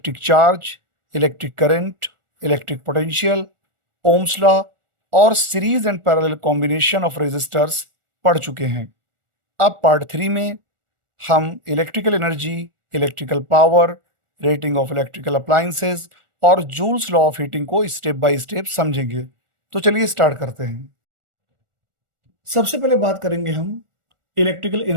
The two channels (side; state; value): left; late; 1.4 ms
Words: charge, electric current, electric potential, ohm's law और series and parallel combination of resistors पढ़ चुके हैं। अब पार्ट 3 में हम electrical energy, electrical power, rating of electrical appliances और जूल्स लॉ ऑफ हीटिंग को स्टेप बाय स्टेप समझेंगे। तो चलिए स्टार्ट करते हैं। सबसे पहले बात करेंगे हम इलेक्ट्रिकल